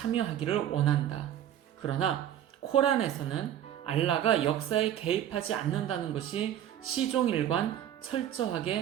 원한다. 그러나 코란에서는 알라가 역사에 개입하지 않는다는 것이 시종일관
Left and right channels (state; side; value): quieter; left; 10.9 dB